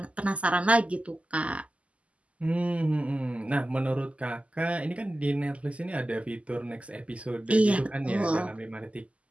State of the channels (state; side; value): late; left; 0.063 ms